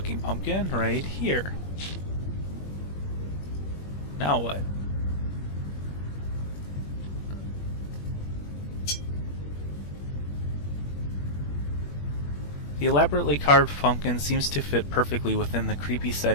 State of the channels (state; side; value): late; right; 21 ms